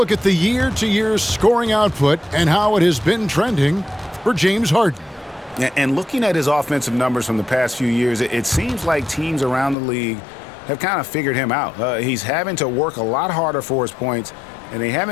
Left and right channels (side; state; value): right; drops out; at 9.8 s